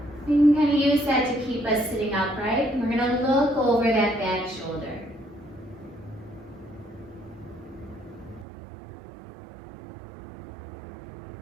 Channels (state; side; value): drops out; left; at 8.5 s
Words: You can kind of use that to keep us sitting upright. And we're going to look over that back shoulder.